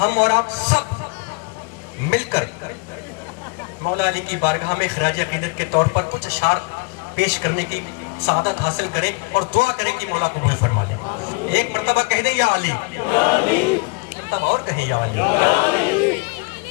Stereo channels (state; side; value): quieter; right; 29.5 dB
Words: اور آپ سب مل کر مولا علی کی بارگاہ میں خراج عقیدت کے طور پر کچھ اشعار پیش کرنے کی سعادت حاصل کریں اور دعا کریں کہ مولا قبول فرما لیں۔ ایک مرتبہ کہہ دیں یا علی، مرتبہ اور کہیں یا علی۔